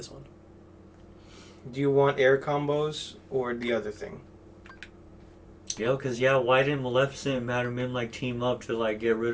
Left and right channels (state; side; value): identical; both; correlation 1.00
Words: one? Do you want air combos or the other thing? Yeah, because, why didn't Maleficent and Madam Mim, team up to, get